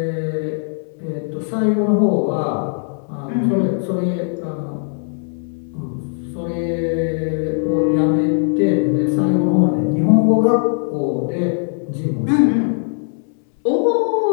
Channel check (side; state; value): right; silent; 66 dB below the other